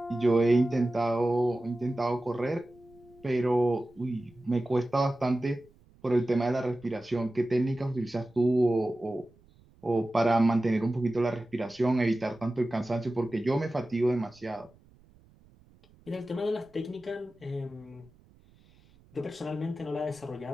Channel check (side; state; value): right; noise; rumble, 28 dB below the sound